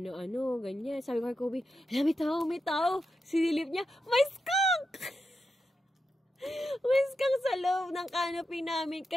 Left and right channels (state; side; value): normal; both; correlation 0.87